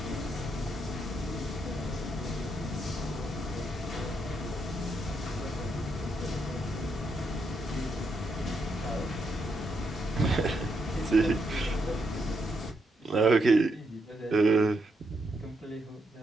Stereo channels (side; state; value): both; normal; correlation 0.80